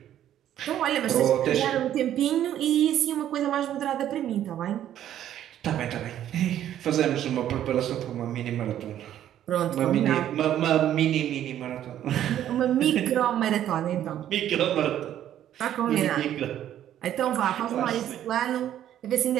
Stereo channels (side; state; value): left; quieter; 11.3 dB